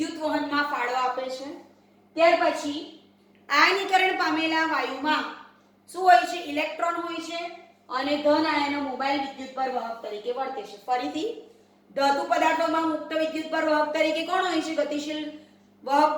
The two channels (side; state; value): both; identical; correlation 1.00